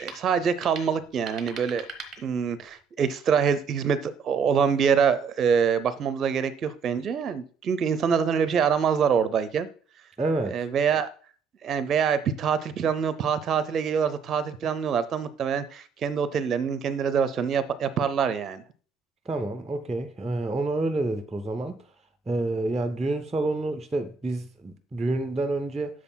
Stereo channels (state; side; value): quieter; left; 5.7 dB